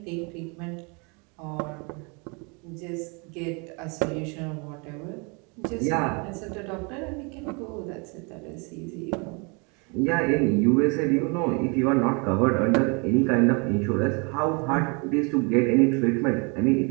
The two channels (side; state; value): left; quieter; 32.3 dB